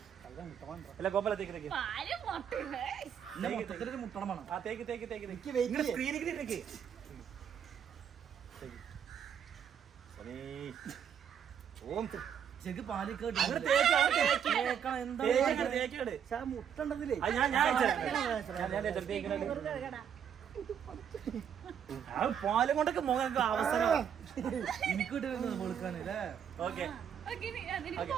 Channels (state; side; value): quieter; left; 8.4 dB